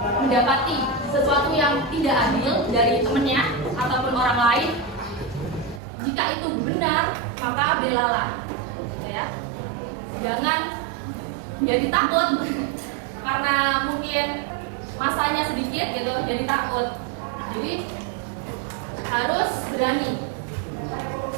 mendapati sesuatu yang tidak adil dari temannya ataupun orang lain, jika itu benar, maka belalah, ya. Jangan jadi takut karena mungkin masanya sedikit gitu, jadi takut. Jadi harus berani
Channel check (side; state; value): left; drops out; at 5.8 s